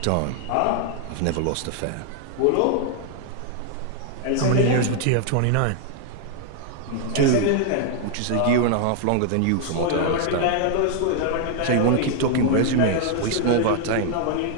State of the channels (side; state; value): both; different; correlation 0.00